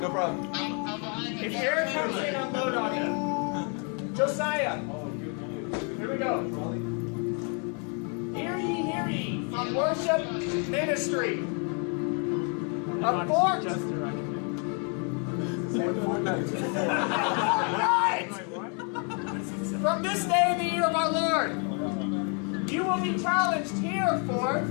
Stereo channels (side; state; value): right; quieter; 38.4 dB